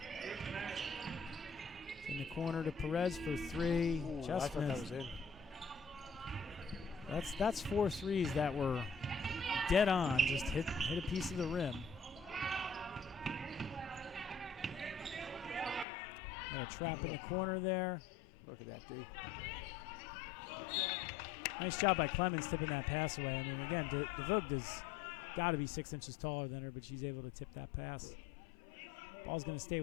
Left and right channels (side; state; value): right; drops out; at 15.9 s